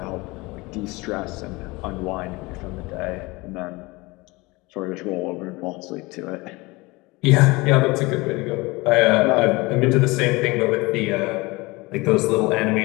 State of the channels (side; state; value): right; quieter; 23.4 dB